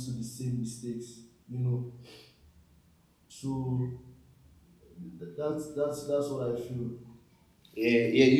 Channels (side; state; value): both; identical; correlation 1.00